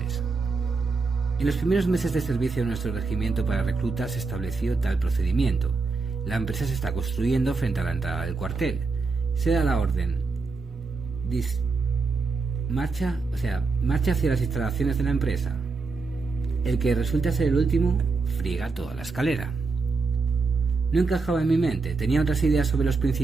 En los primeros meses de servicio de nuestro regimiento para reclutas se estableció tal procedimiento. La empresa se está construyendo frente a la entrada del cuartel. Se da la orden. Marcha hacia las instalaciones de la empresa. El que resulta ser el último friega toda la escalera. No encajaba en mi mente, tenía otras ideas sobre los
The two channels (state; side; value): quieter; left; 4.3 dB